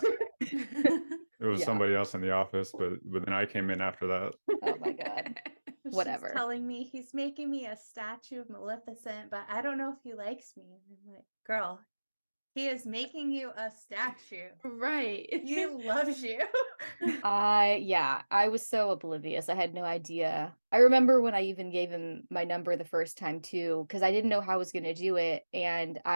It was Yeah. somebody else in the office, but then I came in after that. Oh my God. She's Whatever. telling me he's making me a statue of Maleficent, but I don't know if he likes me. And I'm like, girl, he is making you a statue. Right. He loves you. I was so oblivious. I had no idea. I remember when I even gave him my number the first time too, because I didn't know how I was going to do it. And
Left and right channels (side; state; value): both; inverted; correlation -1.00